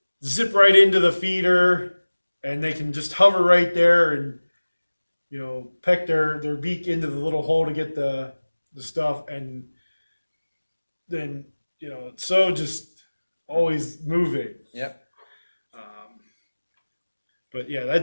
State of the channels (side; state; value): both; inverted; correlation -1.00